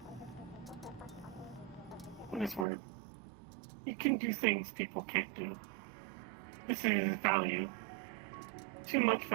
what is word? You can do things people can't do. This is value. Too much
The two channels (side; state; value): left; drops out; at 2.7 s